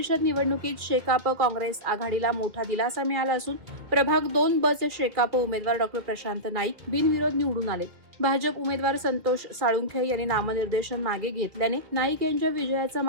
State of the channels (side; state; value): left; late; 2.1 ms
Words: निवडणुकीत शेकाप काँग्रेस आघाडीला मोठा दिलासा मिळाला असून प्रभाग 2 ब चे शेकाप उमेदवार डॉ. प्रशांत नाईक बिनविरोध निवडून आले. भाजप उमेदवार संतोष साळुंखे यांनी नामनिर्देशन मागे घेतल्याने नाईक यांच्या विजयाचा